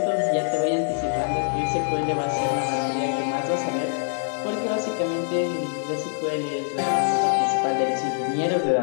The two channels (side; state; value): right; silent; digital silence